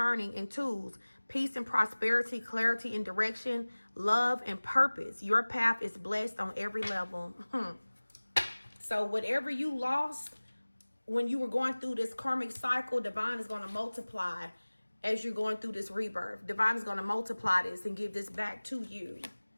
in tools. Peace and prosperity, clarity and direction, love and purpose. Your path is blessed on every level. So whatever you lost when you were going through this karmic cycle, divine is going to multiply as you're going through this rebirth. Divine is going to multiply this and give this back to you.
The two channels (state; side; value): inverted; both; correlation -1.00